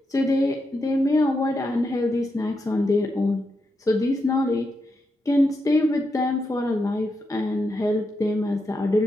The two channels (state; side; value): normal; both; correlation 0.85